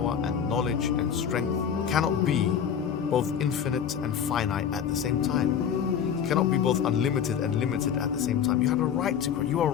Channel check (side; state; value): right; quieter; 8.2 dB